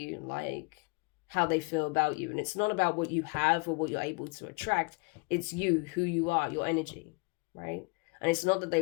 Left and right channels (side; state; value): right; quieter; 30.1 dB